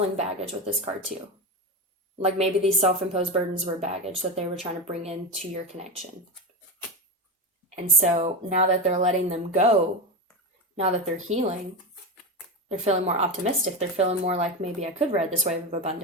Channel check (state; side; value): normal; both; correlation 0.17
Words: baggage with this card too. Like maybe these self-imposed burdens were baggage that they were trying to bring into your connection. And so now that they're letting them go, now that they're healing, they're feeling more optimistic. They're feeling more like, maybe I could ride this wave of